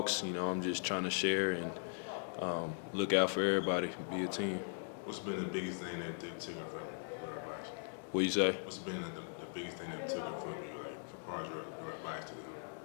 I'm just trying to share and look out for everybody, be a team. What's been the biggest thing that they took from advice? What you say? What's been the biggest thing that took from you, like, as far as your advice to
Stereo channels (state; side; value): silent; right; digital silence